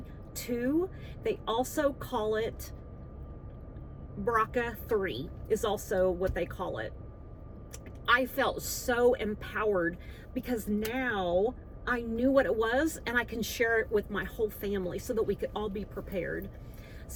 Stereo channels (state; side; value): identical; both; correlation 1.00